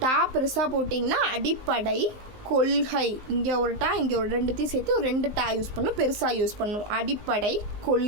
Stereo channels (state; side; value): late; left; 19 ms